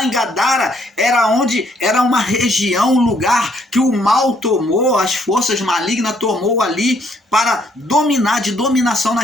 em Gadara era uma região, um lugar que o mal tomou, as forças malignas tomou ali para dominar, de dominação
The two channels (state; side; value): normal; both; correlation 0.68